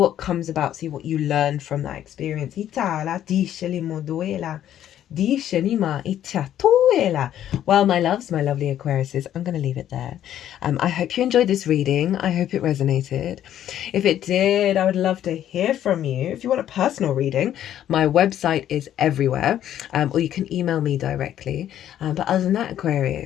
comes about, see what you learn from that experience. Well, my loves, my lovely Aquariuses, I'm going to leave it there. I hope you enjoyed this reading. I hope it resonated. If it did, I would love to hear from you. If you want a personal reading, my website is everywhere, or you can email me directly. But other than that,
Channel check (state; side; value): quieter; right; 11.2 dB